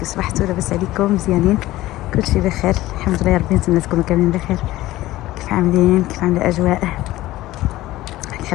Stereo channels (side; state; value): right; quieter; 16.6 dB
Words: صبحتوا لاباس عليكم؟ مزيانين؟ كلشي بخير الحمد لله. ربي نتمنى تكونوا كاملين بخير. كيف عاملين؟ كيف عامله الاجواء؟